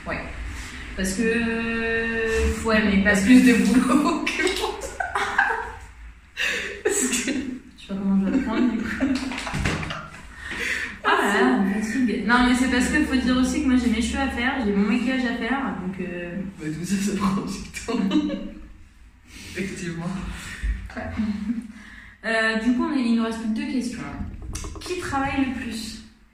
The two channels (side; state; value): both; identical; correlation 1.00